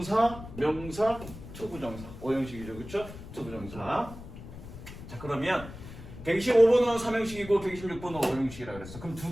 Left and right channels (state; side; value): noise; left; rumble, 13 dB below the sound